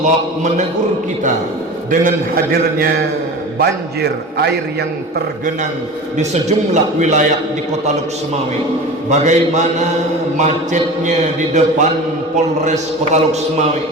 menegur kita dengan hadirnya banjir air yang tergenang di sejumlah wilayah di Kota Luksmawe. Bagaimana macetnya di depan Polres Kota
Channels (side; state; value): both; normal; correlation 0.34